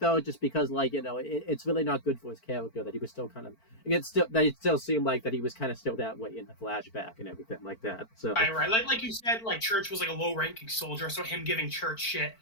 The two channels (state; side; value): late; right; 4.5 ms